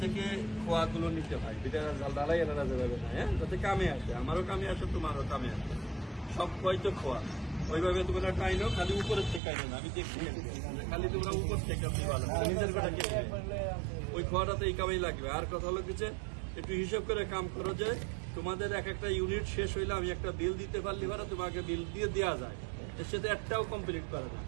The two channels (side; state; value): left; drops out; at 9.4 s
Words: থেকে খোয়াগুলো নিতে হয়, এটা ডালাই আনা যাবে না, হ্যাঁ, যাতে কামে আসে, আমারও কামে আসে, তোমারও কামে আসে। সব খোয়াই তো খোয়া, ওইভাবে তোমরা টাইনো, খালি উপরের থেকে আইনো না। আমি দেখছি খালি তোমরা উপর থেকে নিজের কথা কে ওই খোয়াটাতে এই কামেই লাগবে। আর কথা হলো কিছু একটু হিসাব করে কাম করো যে তোমাদের এক একটা ইউনিট শেষ হইলে আমি একটা বিল দিতে পারলি পারা, তোমাকে বিল দিয়ে দেওয়া যায়, এর সাথে একটাও কমপ্লিট করে না।